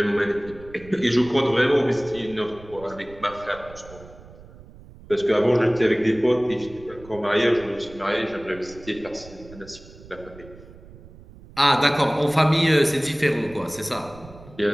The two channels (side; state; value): right; noise; rumble, 20 dB below the sound